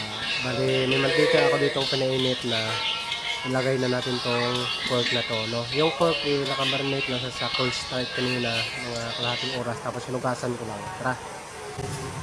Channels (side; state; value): both; identical; correlation 1.00